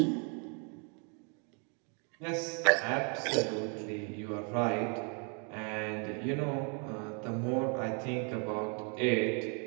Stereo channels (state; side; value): quieter; left; 37.7 dB